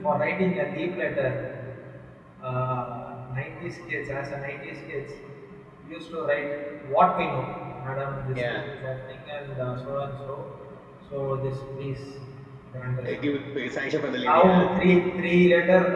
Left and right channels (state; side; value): identical; both; correlation 1.00